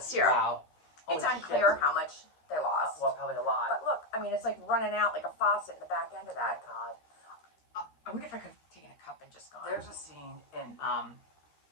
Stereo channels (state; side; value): late; right; 13 ms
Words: syrup. Wow. It's Holy unclear shit. how much they lost. Well, probably a lot. But look, I mean, it's like running out like a faucet in the back end of that. God. I wonder if I could have taken a cup and just gone. There's a scene in